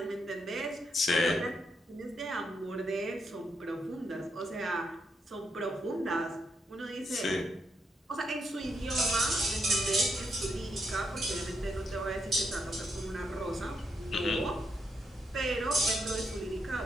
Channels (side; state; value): both; normal; correlation 0.79